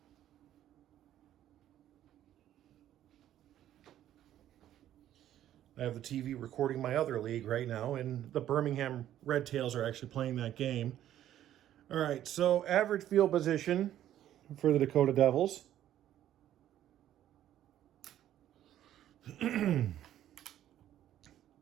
I have the TV recording my other league right now, and the Birmingham Red Tails are actually playing that game. All right, so average field position for the Dakota Devils.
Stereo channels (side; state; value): left; quieter; 11.9 dB